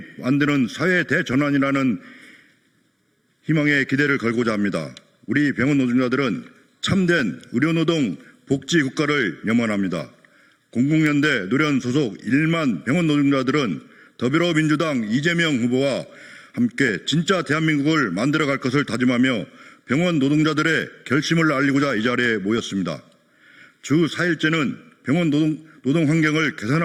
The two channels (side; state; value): both; identical; correlation 1.00